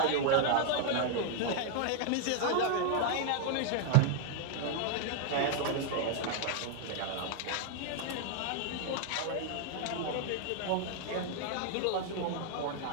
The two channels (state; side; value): different; both; correlation 0.00